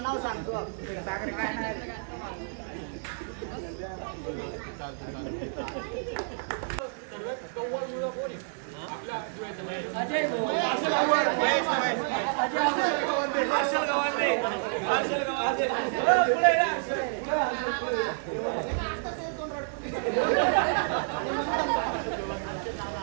नाव सांगतो सागर काय नाही सर्वात कव्वळ मुलं कोण आहे आपल्या जुळ्याच्या?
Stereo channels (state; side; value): silent; left; digital silence